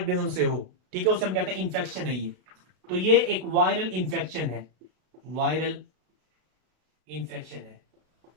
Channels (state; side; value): late; left; 33 ms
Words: से हो, ठीक है, उसे हम कहते हैं इंफेक्शन है ये। तो ये एक वायरल इंफेक्शन है, वायरल इंफेक्शन है।